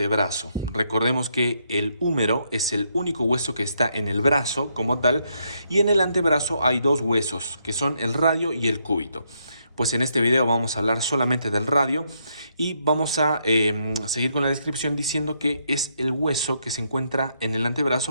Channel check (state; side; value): inverted; both; correlation -0.76